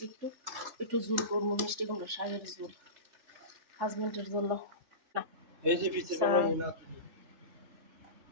একটু একটু ঝুল করবো, মিষ্টি কুমড়া শাকের ঝুল হাজবেন্ডের জন্য। এই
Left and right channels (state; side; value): late; left; 3.3 ms